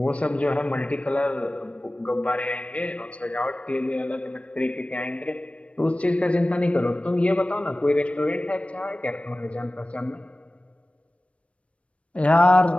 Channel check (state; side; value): late; right; 0.062 ms